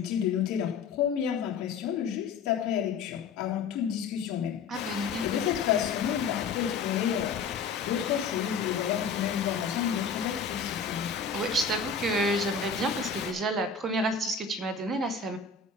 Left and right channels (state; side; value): quieter; right; 5.1 dB